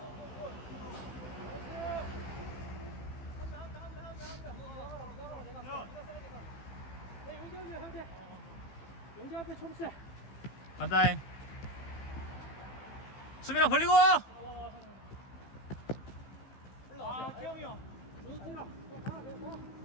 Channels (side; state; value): right; late; 15 ms